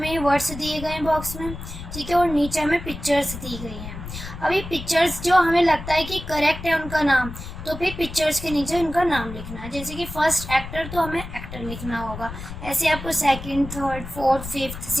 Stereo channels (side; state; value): left; noise; rumble, 10 dB below the sound